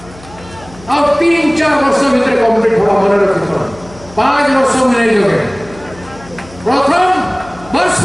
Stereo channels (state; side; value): noise; left; hum, 21 dB below the sound